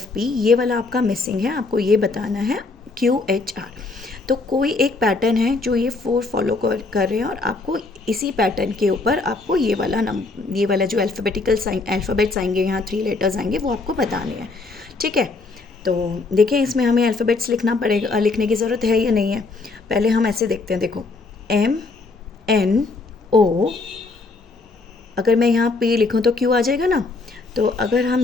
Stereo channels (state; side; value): quieter; right; 3.7 dB